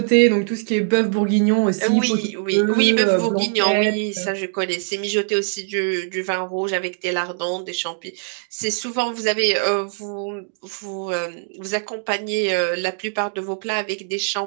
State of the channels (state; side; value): silent; left; digital silence